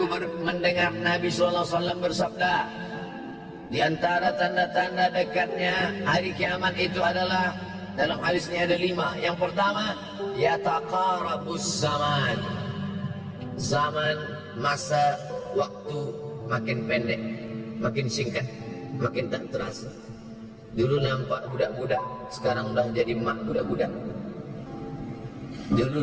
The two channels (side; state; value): both; identical; correlation 1.00